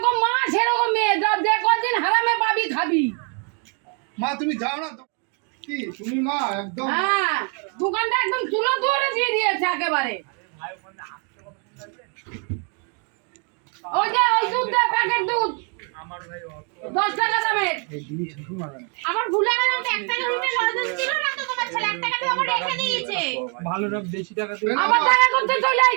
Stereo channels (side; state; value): left; quieter; 38.0 dB